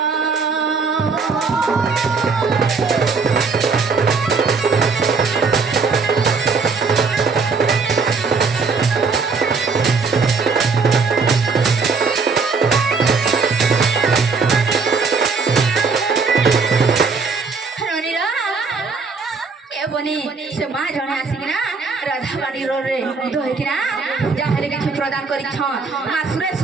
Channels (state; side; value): quieter; left; 4.7 dB